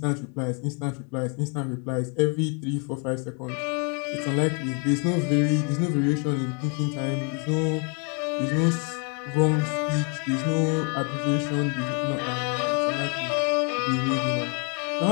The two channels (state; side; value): quieter; right; 36.7 dB